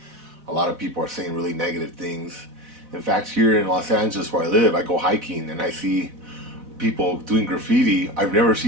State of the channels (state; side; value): late; left; 4.0 ms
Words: A lot of people are saying really negative things. In fact, here in Los Angeles where I live, I go hiking and I see people doing graffiti. I've never